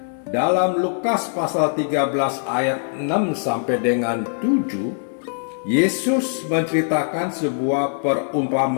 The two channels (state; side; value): silent; right; digital silence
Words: Dalam Lukas pasal 13 ayat 6 sampai dengan 7, Yesus menceritakan sebuah